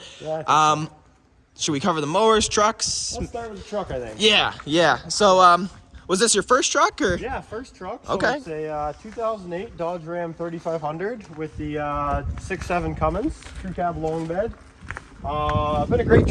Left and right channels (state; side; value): identical; both; correlation 1.00